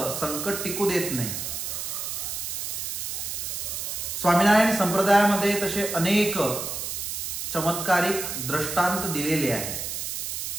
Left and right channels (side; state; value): right; noise; hiss, 4 dB below the sound